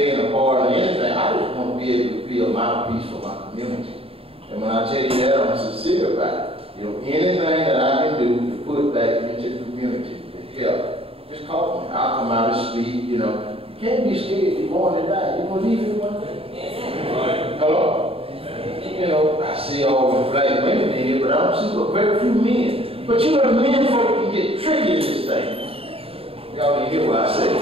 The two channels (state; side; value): late; left; 0.27 ms